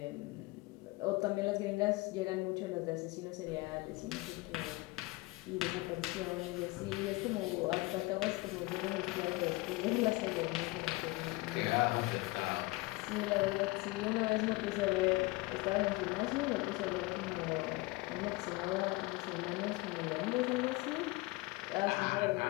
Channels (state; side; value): quieter; right; 22.3 dB